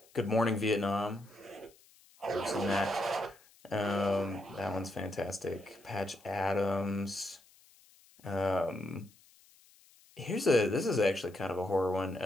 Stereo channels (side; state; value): left; noise; hiss, 28 dB below the sound